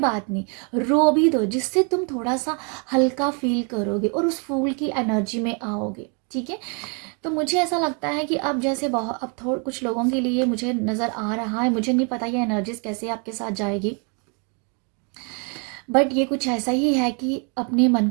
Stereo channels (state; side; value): quieter; left; 36.3 dB